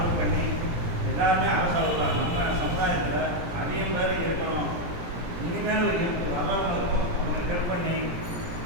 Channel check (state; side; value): late; left; 17 ms